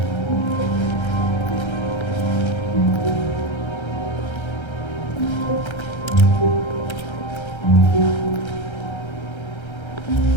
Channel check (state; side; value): late; right; 1.3 ms